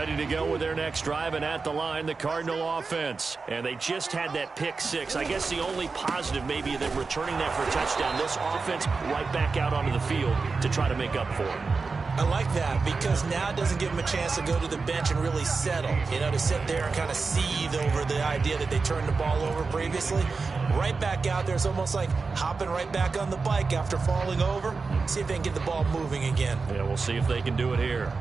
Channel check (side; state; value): left; quieter; 4.4 dB